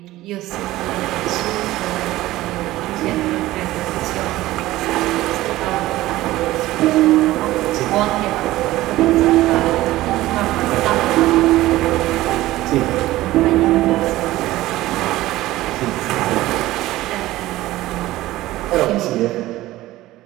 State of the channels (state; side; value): quieter; left; 16.6 dB